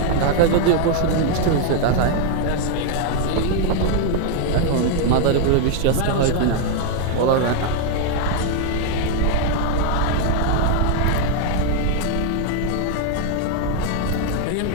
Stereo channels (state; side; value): different; both; correlation 0.00